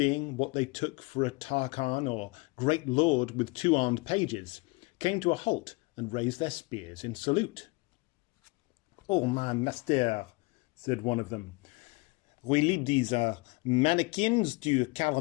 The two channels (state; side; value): quieter; right; 26.2 dB